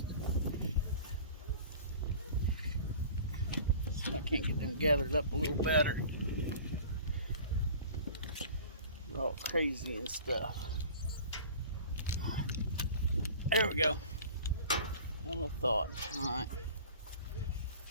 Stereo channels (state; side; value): inverted; both; correlation -0.43